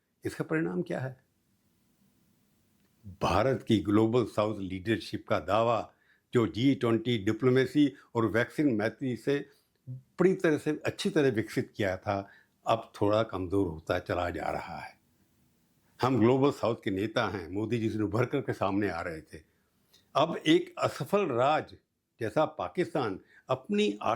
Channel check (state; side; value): identical; both; correlation 1.00